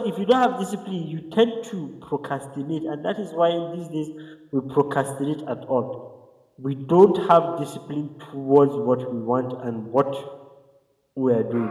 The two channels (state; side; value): identical; both; correlation 1.00